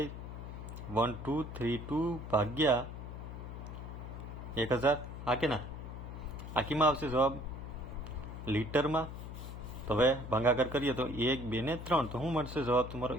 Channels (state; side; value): noise; left; hum, 9 dB below the sound